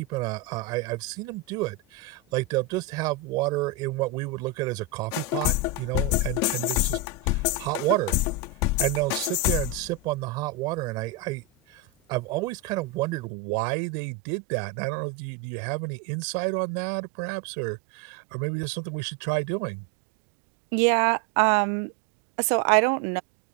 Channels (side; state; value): left; drops out; at 13.2 s